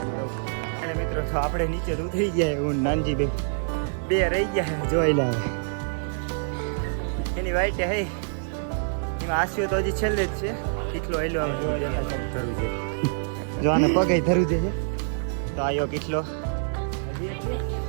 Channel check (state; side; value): silent; left; digital silence